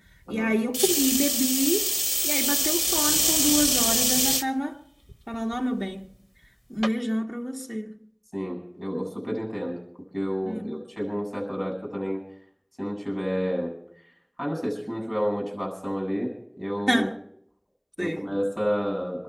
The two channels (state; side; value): identical; both; correlation 1.00